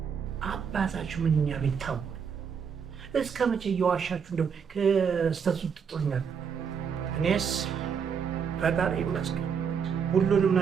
አባታችሁ ምንኛ ቢታወቅ እስከ መቼ እየዋሻችሁ እንደው ከስተቱ ትጥሩኛል? እኔስ ፈጣሪ ይመስገን ሁሉንም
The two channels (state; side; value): quieter; left; 6.8 dB